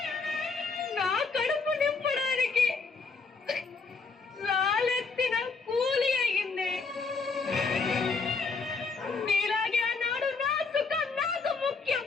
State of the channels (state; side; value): quieter; right; 4.5 dB